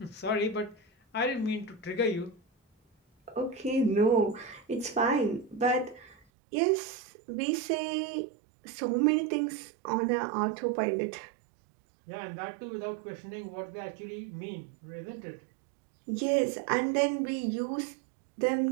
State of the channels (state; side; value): drops out; left; at 6.2 s